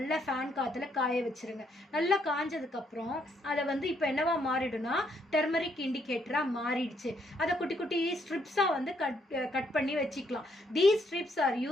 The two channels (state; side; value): normal; both; correlation 0.73